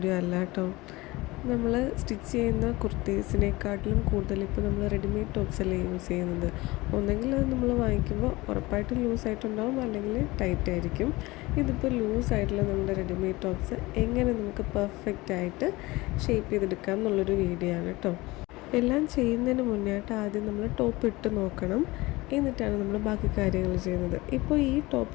അല്ല കേട്ടോ. നമ്മൾ സ്റ്റിച്ച് ചെയ്യുന്ന കുർത്തീസിനെക്കാട്ടിലും കൂടുതൽ ഇപ്പോൾ നമ്മൾ റെഡിമെയ്ഡ് ടോപ്സ് അല്ലേ യൂസ് ചെയ്യുന്നത്. ഒന്നെങ്കിൽ അത് നമ്മൾ വാങ്ങിക്കുമ്പോൾ ഉറപ്പായിട്ടും ലൂസായിട്ടുണ്ടാവും, അല്ലെങ്കിൽ ടൈറ്റ് ആയിരിക്കും. ഇതിപ്പോൾ ലൂസായിട്ടുള്ള നമ്മുടെ റെഡിമെയ്ഡ് ടോപ്സ് എങ്ങനെ നമുക്ക് പെർഫെക്റ്റ് ആയിട്ട് ഷേപ്പ് ചെയ്തെടുക്കാം എന്നുള്ളൊരു വീഡിയോ ആണ് കേട്ടോ. എല്ലാം ചെയ്യുന്നതിന് മുന്നേയായിട്ട് ആദ്യം നമ്മൾ ടോപ്പ് ഇട്ട് നോക്കണം, എന്നിട്ടാണ് നമ്മൾ ബാക്കി കാര്യങ്ങൾ ചെയ്യുന്നത്. ഇപ്പോൾ ഈ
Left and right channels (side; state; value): right; quieter; 21.2 dB